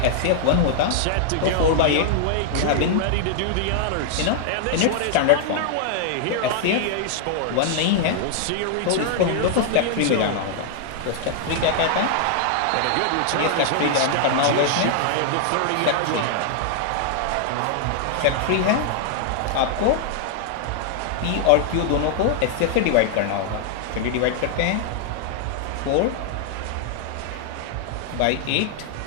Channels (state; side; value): different; both; correlation -0.01